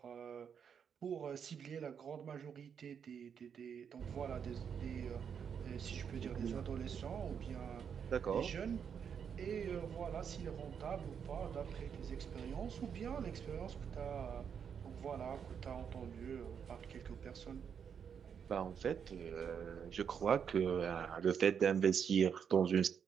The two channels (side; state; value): left; quieter; 7.4 dB